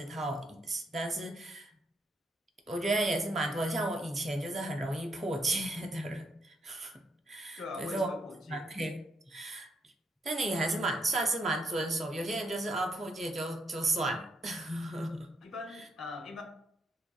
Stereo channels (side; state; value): both; normal; correlation 0.76